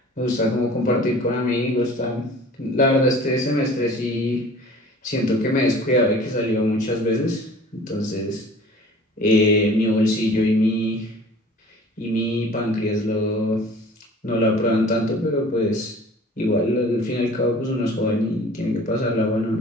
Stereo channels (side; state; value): both; normal; correlation 0.46